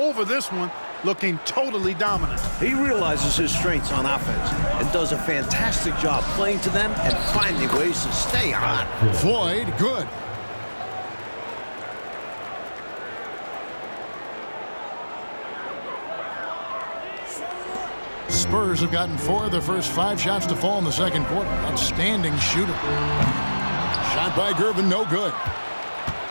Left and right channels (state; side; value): inverted; both; correlation -1.00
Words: this one, looking totally dominant. He realizes his strengths on offense and does a fantastic job playing to them and finding ways to stay hot. Floyd, good. Spurs have gotten 4 of their first 5 shots to fall in the second quarter. Outstanding shooter. Shot by Gervin, no good.